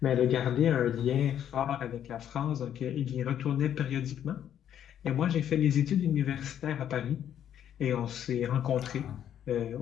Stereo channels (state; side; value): quieter; right; 10.0 dB